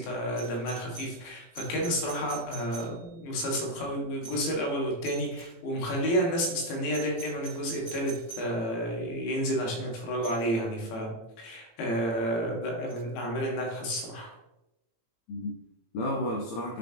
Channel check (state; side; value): late; right; 18 ms